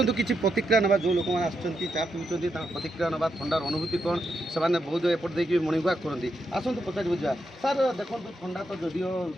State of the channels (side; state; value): both; normal; correlation 0.83